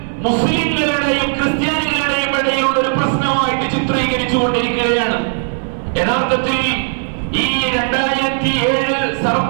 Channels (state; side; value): silent; left; 58 dB below the other